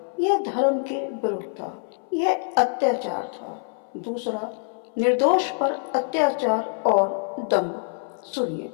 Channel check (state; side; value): silent; right; 62 dB below the other